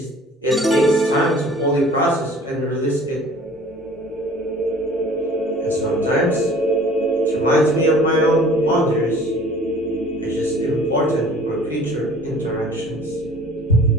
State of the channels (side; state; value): both; normal; correlation 0.49